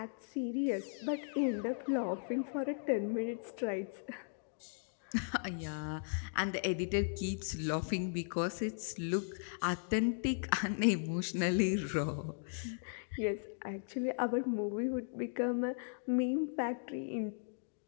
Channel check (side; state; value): right; silent; digital silence